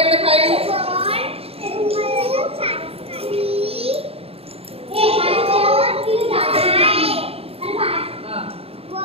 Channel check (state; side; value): late; left; 0.28 ms